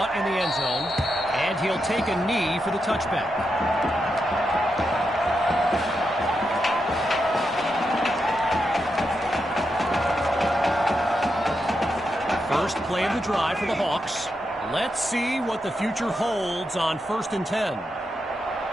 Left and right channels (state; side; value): normal; both; correlation 0.85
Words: in the end zone, and he'll take a knee for the touchback. First play of the drive for the Hawks. Let's see what the future holds on 1st and 10.